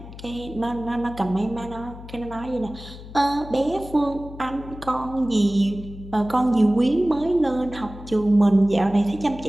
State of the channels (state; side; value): noise; left; hum, 15 dB below the sound